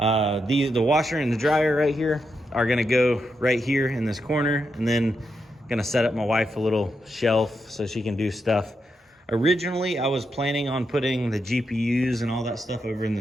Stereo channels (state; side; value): normal; both; correlation 0.84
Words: washer and the dryer right here are gonna go right here in this corner, and then gonna set up my wife a little shelf so she can do stuff. Originally, I was planning on putting the GPUs and all that stuff over in